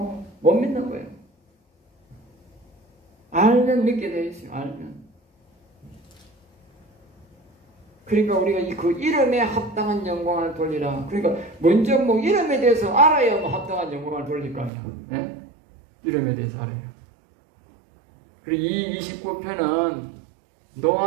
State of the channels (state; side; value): drops out; left; at 14.7 s